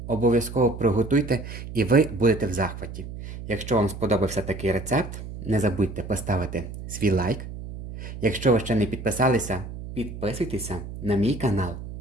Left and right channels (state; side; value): noise; right; hum, 10 dB below the sound